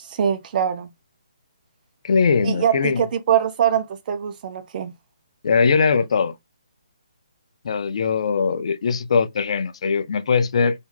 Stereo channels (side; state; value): both; inverted; correlation -0.67